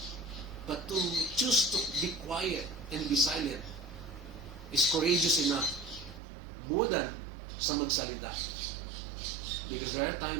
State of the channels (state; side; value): drops out; left; at 6.2 s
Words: But to choose to be quiet and be silent is courageous enough more than sa magsalita. Because there are